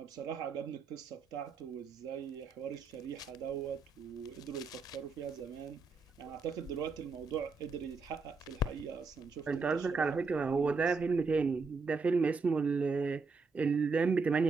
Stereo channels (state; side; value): quieter; left; 4.4 dB